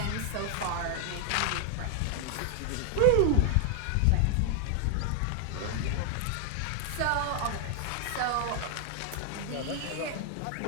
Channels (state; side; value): different; both; correlation 0.00